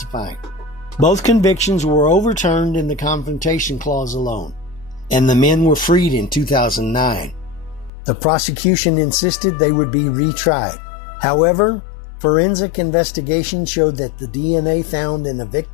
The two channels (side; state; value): right; drops out; at 7.9 s